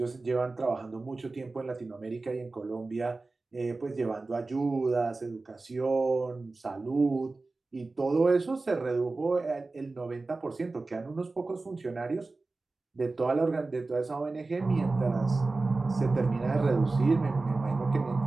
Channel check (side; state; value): left; quieter; 3.5 dB